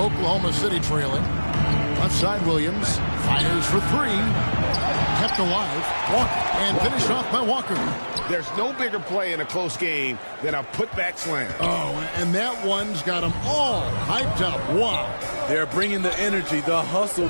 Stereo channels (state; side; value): inverted; both; correlation -1.00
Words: City trailing. Left side Williams, fires for 3. Kept alive, Walker, and finished off by Walker. There's no bigger play in a close game than a putback slam. Oh, and that one's got them all hyped up. Wow. They're bringing the energy, the hustle,